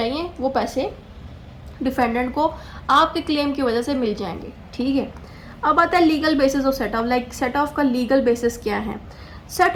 वो पैसे डिफेंडेंट को आपके क्लेम की वजह से मिल जाएंगे। ठीक है। अब आता है legal basis of set of. Like set of का लीगल बेसिस क्या है।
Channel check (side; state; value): both; identical; correlation 1.00